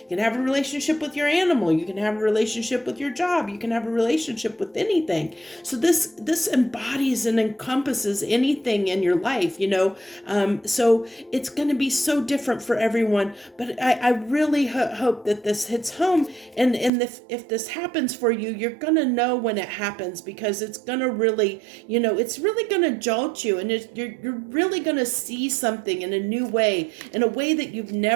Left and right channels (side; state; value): left; drops out; at 16.9 s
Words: can have a relationship with your animal, you can have a relationship with your job, you can have a relationship with anything. So this embodies and encompasses anything in your life. So it's going to be so different for everyone, but I really hope that this hits home, and if this happens for you, you're going to know when it happens, because it's going to really, it's really going to jolt you, and you're really going to see something in a new way, in a way that you've